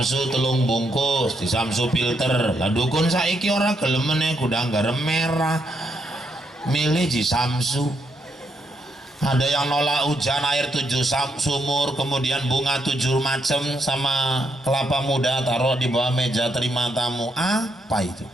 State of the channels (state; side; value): normal; both; correlation 0.78